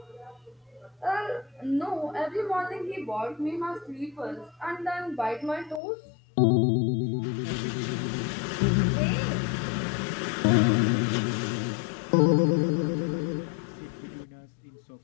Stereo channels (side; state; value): right; drops out; at 5.8 s